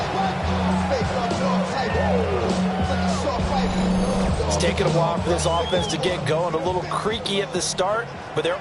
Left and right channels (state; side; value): identical; both; correlation 1.00